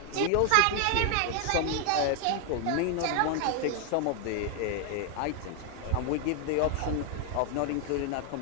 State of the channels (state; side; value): different; both; correlation 0.00